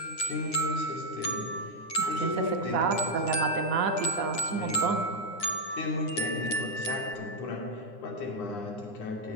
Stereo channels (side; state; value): right; late; 9.8 ms